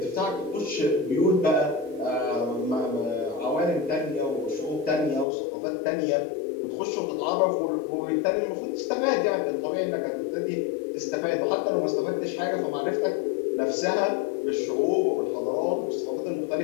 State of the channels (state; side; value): drops out; right; at 5.2 s